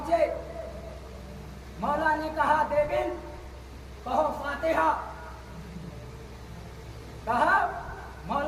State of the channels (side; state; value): both; identical; correlation 1.00